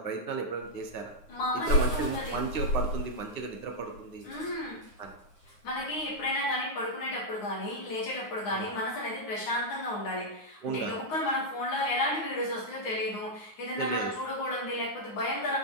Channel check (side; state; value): right; late; 9.6 ms